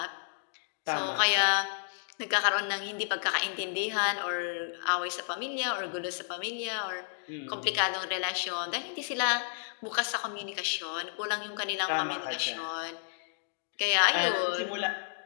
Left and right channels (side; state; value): right; silent; digital silence